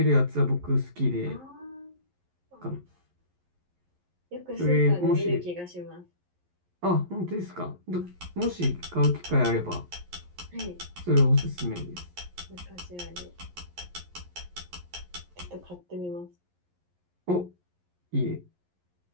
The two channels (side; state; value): left; late; 11 ms